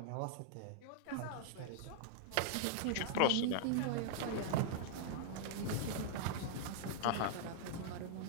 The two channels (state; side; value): different; both; correlation -0.01